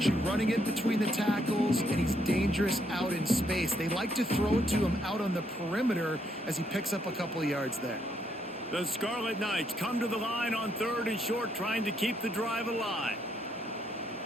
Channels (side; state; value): both; normal; correlation 0.74